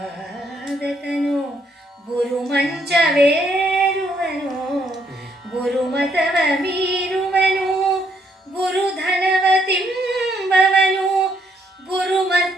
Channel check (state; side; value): normal; both; correlation 0.71